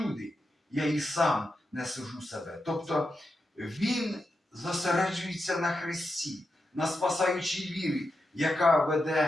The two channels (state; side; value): normal; both; correlation 0.88